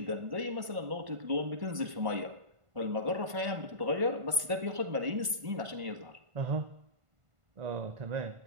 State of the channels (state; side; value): late; left; 1.1 ms